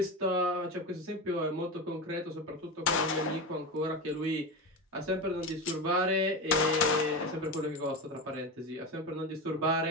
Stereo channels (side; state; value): both; normal; correlation 0.21